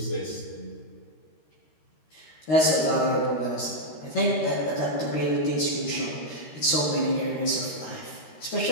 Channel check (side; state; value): right; late; 13 ms